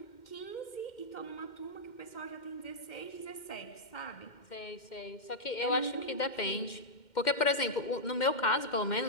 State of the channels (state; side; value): late; right; 2.1 ms